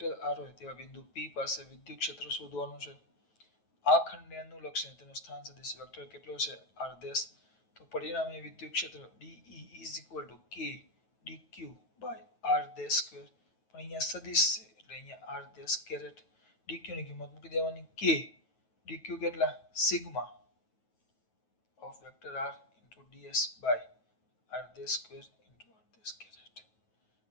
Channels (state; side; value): late; right; 9.2 ms